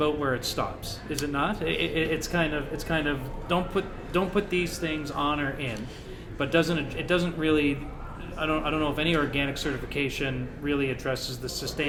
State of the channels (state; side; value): identical; both; correlation 1.00